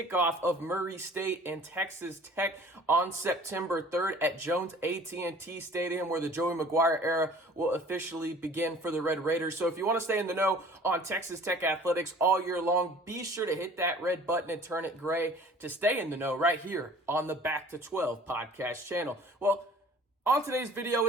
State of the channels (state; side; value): normal; both; correlation 0.49